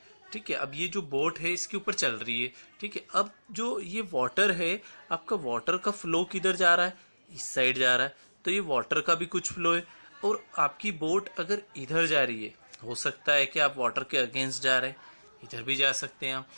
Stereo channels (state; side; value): inverted; both; correlation -1.00